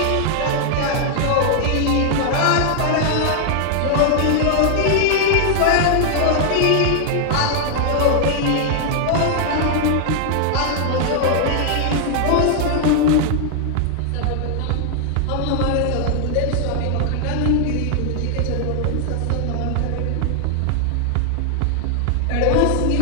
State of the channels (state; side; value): different; both; correlation 0.00